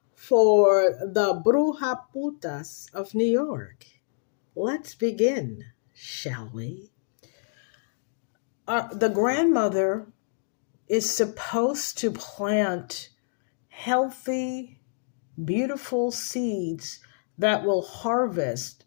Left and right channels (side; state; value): right; silent; digital silence